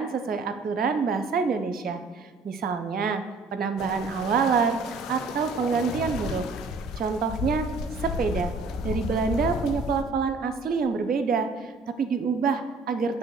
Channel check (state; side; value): quieter; left; 3.9 dB